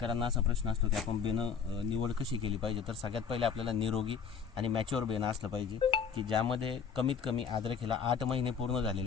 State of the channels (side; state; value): right; quieter; 6.5 dB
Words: असा प्रश्न असतो की आपण बेणं निवड कशी केली पाहिजे. तर सगळ्यात पहिले आपल्याला निरोगी आणि मॅच्युअर बेणं असलं पाहिजे की ज्यामध्ये कमीत कमी अद्रकीला 8 महिने पूर्ण